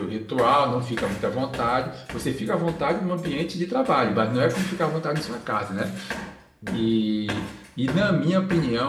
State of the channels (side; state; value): both; identical; correlation 1.00